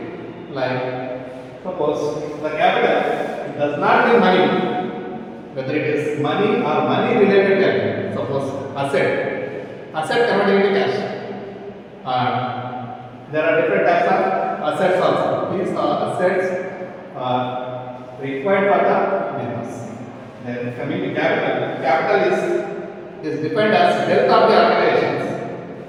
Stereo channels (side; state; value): both; identical; correlation 1.00